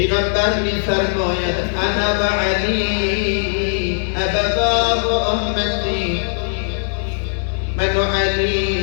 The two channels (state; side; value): silent; right; 66 dB below the other